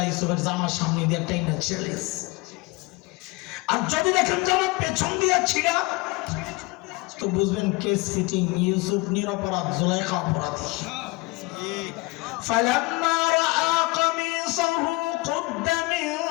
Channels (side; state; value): right; quieter; 24.3 dB